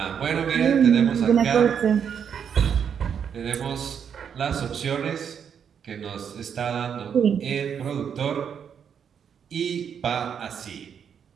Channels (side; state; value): left; quieter; 7.7 dB